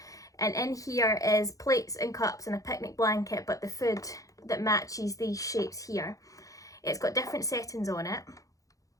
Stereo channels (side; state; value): right; late; 0.16 ms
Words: And in here is plates and cups and a picnic blanket, but the food that matches these shapes here. It's got different settings on it.